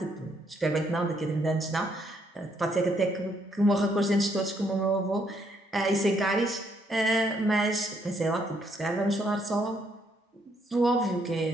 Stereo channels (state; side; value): normal; both; correlation 0.72